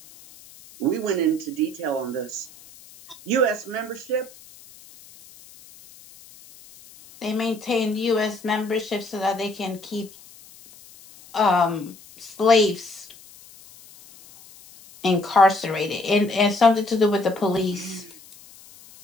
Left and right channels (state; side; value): noise; left; hiss, 22 dB below the sound